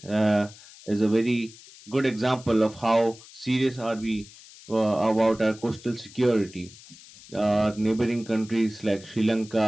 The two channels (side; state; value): left; noise; hiss, 20 dB below the sound